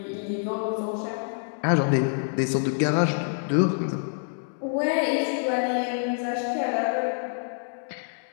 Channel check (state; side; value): silent; right; digital silence